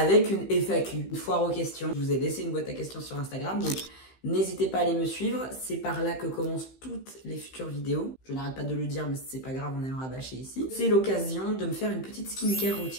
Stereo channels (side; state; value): right; late; 15 ms